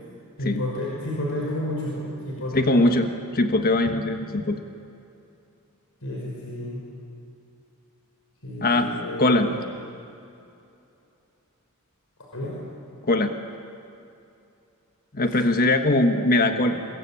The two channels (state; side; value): normal; both; correlation 0.38